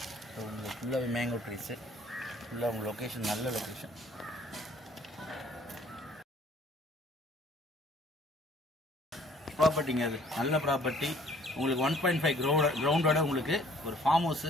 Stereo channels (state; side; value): normal; both; correlation 0.57